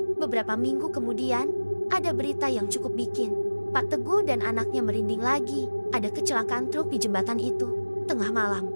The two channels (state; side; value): inverted; both; correlation -1.00